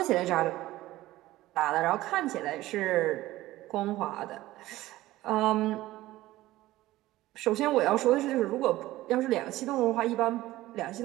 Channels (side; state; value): left; quieter; 16.6 dB